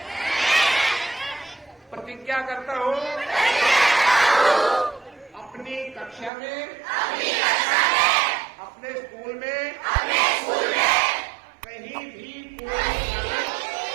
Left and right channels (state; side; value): drops out; left; at 6.3 s